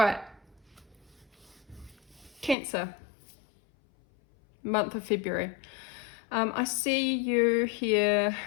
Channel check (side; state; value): right; drops out; at 2.6 s